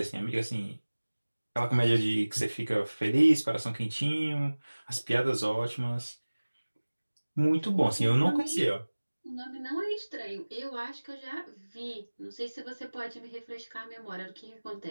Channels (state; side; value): inverted; both; correlation -1.00